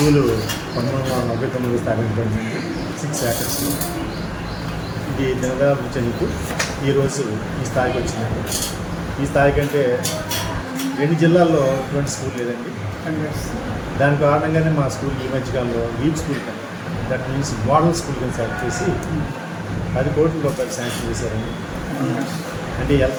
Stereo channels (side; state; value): both; identical; correlation 1.00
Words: 1999 స్థాపించబడింది. 6 acres. ఇది దినదయాభివృద్ధి చెందుతూ ఈరోజు ఈ స్థాయికి వచ్చిందండి. ఈ స్థాయి కంటే 2 జిల్లాల్లో ఇటువంటి స్కూల్ లేదండి. దాని కారణంగానే మా స్కూల్ ఈ మధ్యకాలంలో లీప్ స్కూల్ కానీ, దట్ మీన్స్ మోడల్ స్కూల్ కింద సెలెక్ట్ చేసి 10 కోట్ల రూపాయలు శాంక్షన్ చేశారండి. అంటే